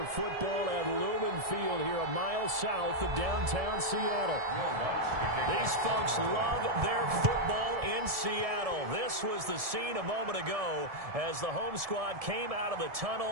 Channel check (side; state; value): left; late; 1.7 ms